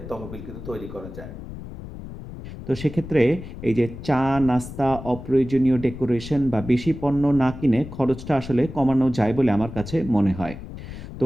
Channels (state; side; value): noise; left; rumble, 12 dB below the sound